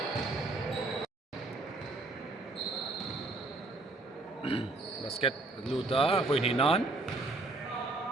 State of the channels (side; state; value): left; quieter; 3.1 dB